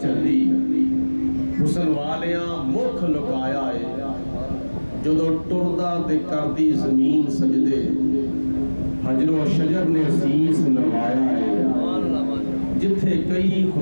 چلی، حسن والیاں مکھ لکایا ہے، جدو ٹردہ دے کردی زمین سجدے، حجر و شجر نے سیس نوایا ہے، جتھے کئی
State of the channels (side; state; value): both; inverted; correlation -1.00